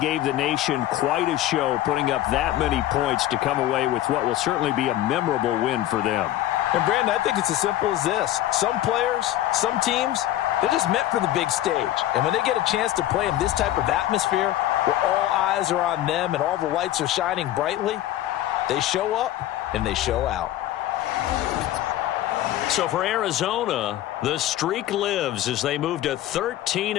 the nation quite a show, putting up that many points to come away with what will certainly be a memorable win for them. And, Brandon, I think it's as simple as this. Some players, some teams, they're just meant for the big stage. And when they get a chance to play in this type of atmosphere where all eyes are on them and all the lights are shining brightly, they show up and they show out. So for Arizona, the streak lives as they move to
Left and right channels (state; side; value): quieter; right; 13.7 dB